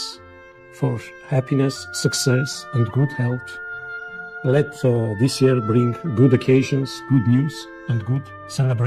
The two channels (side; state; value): both; identical; correlation 1.00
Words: for happiness, success, and good health. Let this year bring good occasions, good news, and good